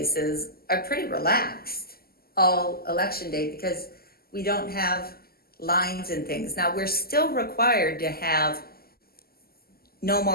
are pretty relaxed all election day because we don't have lines and things. Now, we're still required to have no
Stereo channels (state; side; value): late; right; 0.45 ms